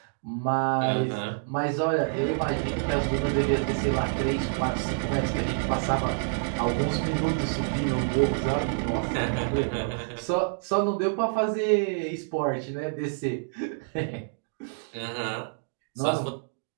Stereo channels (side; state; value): left; silent; digital silence